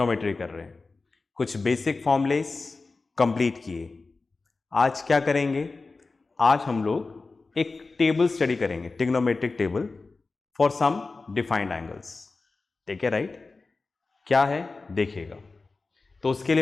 कर रहे हैं। कुछ बेसिक फॉर्मूलेस कंप्लीट किए। आज क्या करेंगे? आज हम लोग एक टेबल स्टडी करेंगे, trigonometric table for some defined angles. ठीक है, राइट? क्या है देखिएगा। तो उसके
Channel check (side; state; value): right; quieter; 3.8 dB